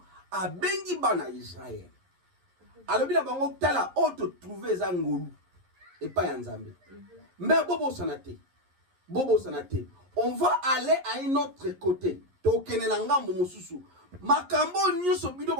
a bengi bana Israël. Alors, il a bango tala auto trouvé zangolu et pas yanzambe. Mais bobo sanate, on va aller à un autre côté. Tokene nanga momususu. Makambo nyuso bido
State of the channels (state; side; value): late; left; 11 ms